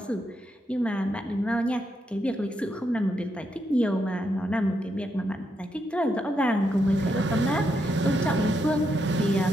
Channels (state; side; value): normal; both; correlation 0.81